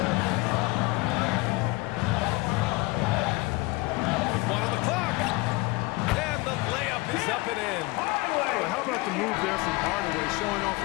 With 1 on the clock. And the layup is up and in. Well, how about the move there from Hardaway, showing off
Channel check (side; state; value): right; quieter; 23.3 dB